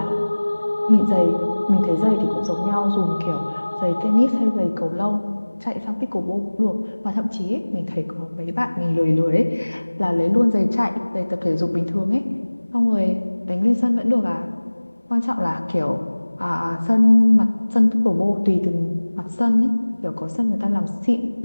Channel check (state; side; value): inverted; both; correlation -1.00